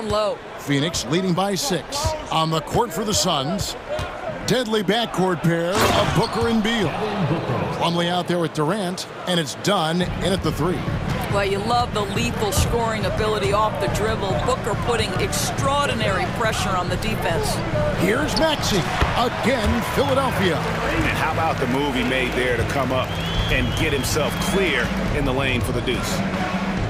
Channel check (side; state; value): both; identical; correlation 1.00